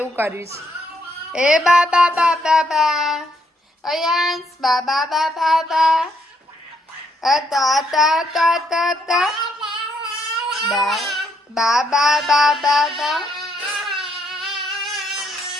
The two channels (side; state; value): both; normal; correlation 0.73